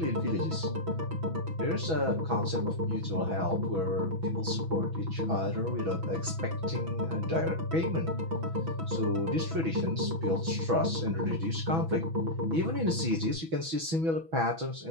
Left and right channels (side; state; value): left; late; 6.1 ms